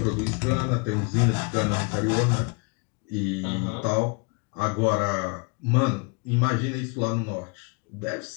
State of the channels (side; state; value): right; quieter; 32.7 dB